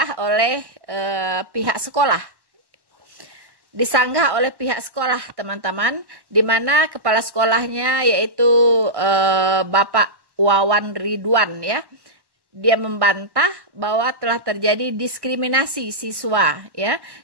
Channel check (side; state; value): left; late; 1.1 ms